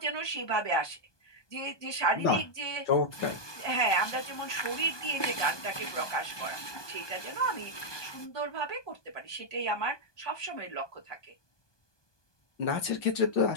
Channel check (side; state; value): right; late; 1.2 ms